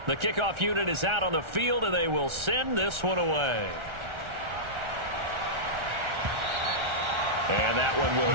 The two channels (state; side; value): late; left; 1.4 ms